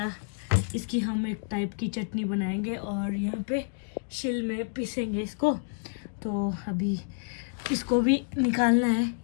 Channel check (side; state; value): right; silent; digital silence